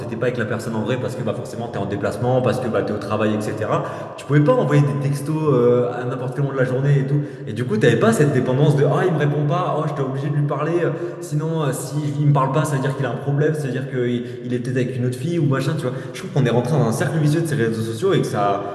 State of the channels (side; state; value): both; identical; correlation 1.00